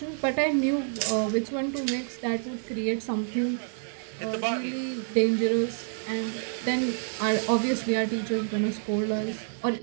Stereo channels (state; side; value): silent; left; 59 dB below the other